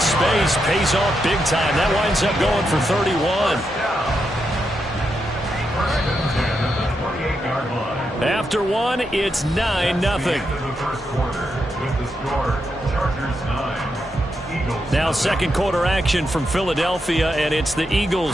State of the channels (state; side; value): normal; both; correlation 0.84